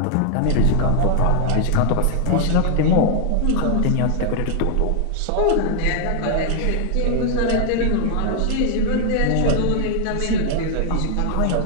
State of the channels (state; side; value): different; both; correlation 0.00